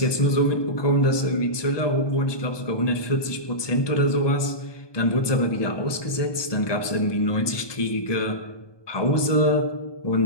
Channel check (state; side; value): late; right; 1.2 ms